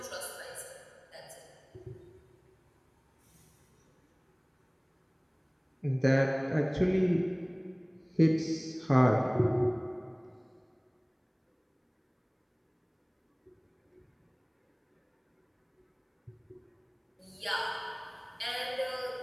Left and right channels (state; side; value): identical; both; correlation 1.00